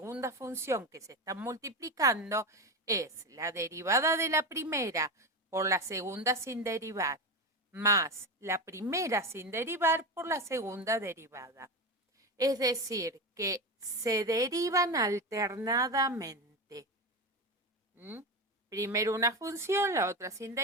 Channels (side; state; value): both; normal; correlation 0.19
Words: función que se están multiplicando, es la derivada de la primera por la segunda sin derivar, más la primera sin derivar por la segunda derivada. Es decir, que se derivan alternadamente. Primero una función, la otra sin